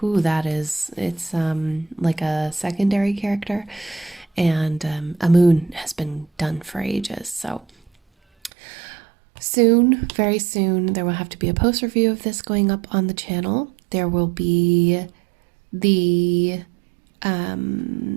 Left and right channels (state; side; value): drops out; left; at 8.5 s